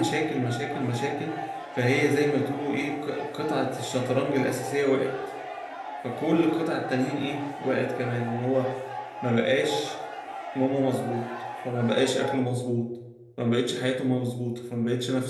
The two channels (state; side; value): identical; both; correlation 1.00